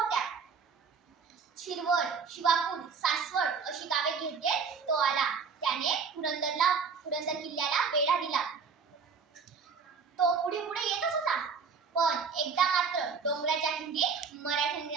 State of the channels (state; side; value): quieter; left; 5.5 dB